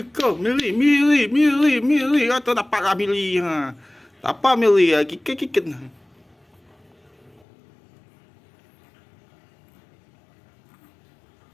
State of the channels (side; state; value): right; drops out; at 7.5 s